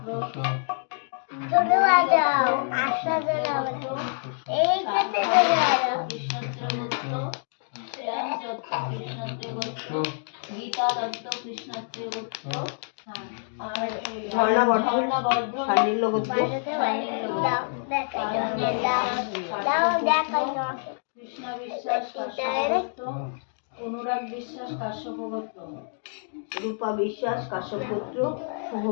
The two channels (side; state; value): right; silent; digital silence